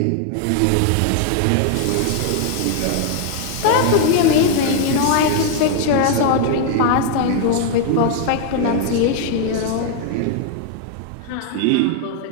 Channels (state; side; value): different; both; correlation 0.00